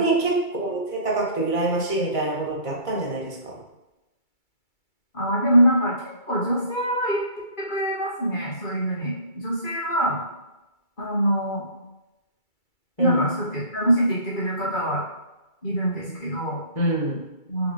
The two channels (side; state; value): right; late; 2.3 ms